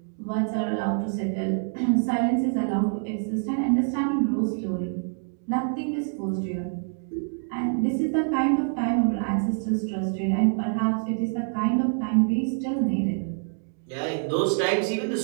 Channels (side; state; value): left; silent; 61 dB below the other